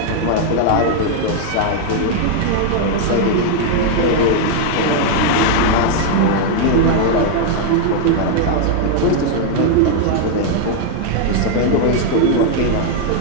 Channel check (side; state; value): both; different; correlation 0.00